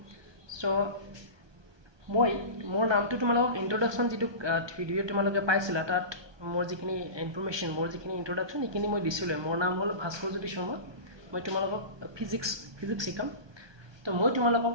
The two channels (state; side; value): late; left; 1.2 ms